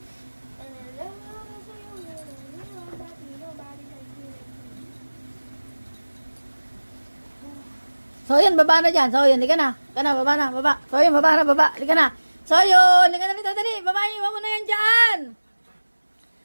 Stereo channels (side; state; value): both; inverted; correlation -1.00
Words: So yun, baba na dyan. So yun, hindi ka na. Ka na, baba na, baba. So yun, baba na, baba. Hindi ka na. So yun, hindi ka na dito, dali. Baba, iwan mo na yan dyan.